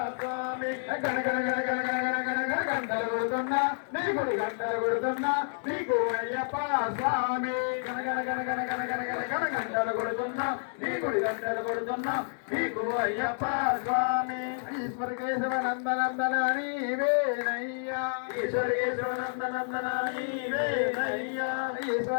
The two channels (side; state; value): right; silent; digital silence